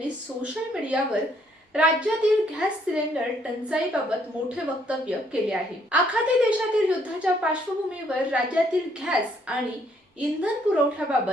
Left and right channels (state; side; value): normal; both; correlation 0.68